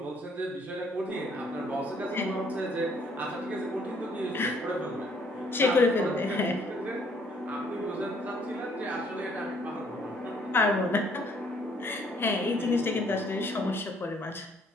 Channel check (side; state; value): both; normal; correlation 0.64